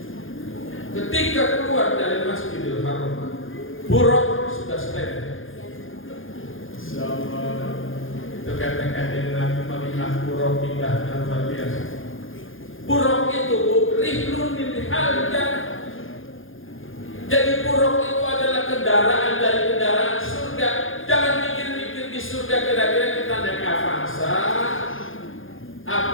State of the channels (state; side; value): late; right; 0.59 ms